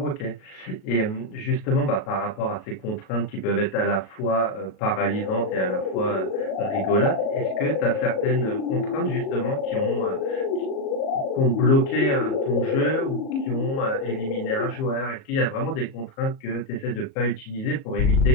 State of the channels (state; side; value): late; right; 37 ms